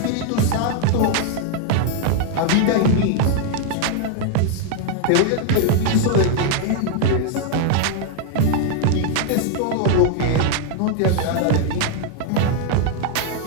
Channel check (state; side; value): different; both; correlation 0.00